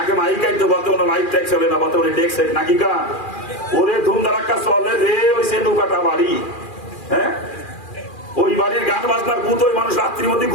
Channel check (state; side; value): late; right; 2.4 ms